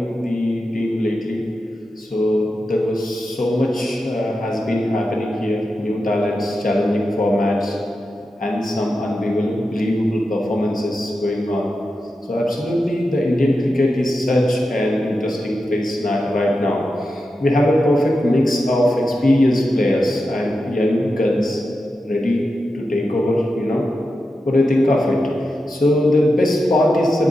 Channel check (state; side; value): normal; both; correlation 0.89